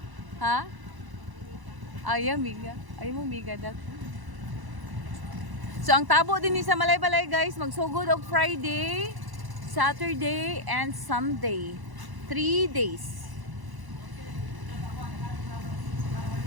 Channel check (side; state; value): left; late; 1.0 ms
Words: Ha? Ay, miga. Ay mo miga dat. So ang tabo din ni sa Malay-Balay guys, magsugod og Friday, Saturday and Sunday. 3 days.